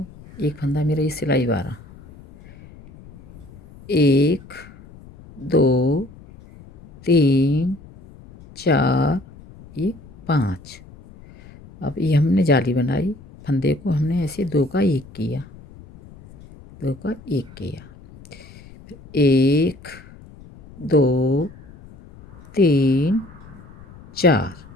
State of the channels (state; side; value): noise; left; rumble, 21 dB below the sound